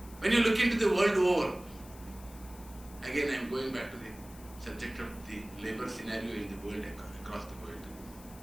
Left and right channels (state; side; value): noise; left; hiss, 20 dB below the sound